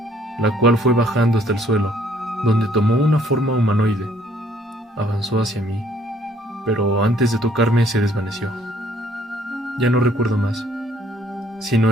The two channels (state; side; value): normal; both; correlation 0.63